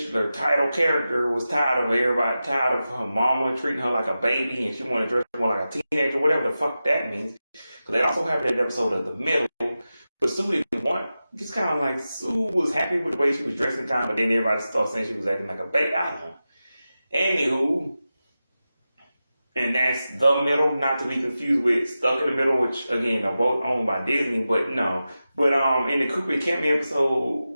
title character, was tired of her mama treating her like a baby, and she wanted to dress more like a teenager, whatever the fuck that means. So that also happened in the episode of The Middle. But Sue didn't want, just kind of like, Sue was happy with the way she was dressing, but then everybody started saying she was acting like a baby. I don't know. Anywho, and that's The Middle, not to be confused with Stuck in the Middle, which, again, are both owned by Disney, but no. But in the Cooper Campbell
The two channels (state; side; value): inverted; both; correlation -0.93